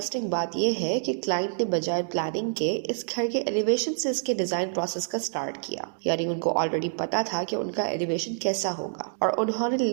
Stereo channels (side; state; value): left; silent; digital silence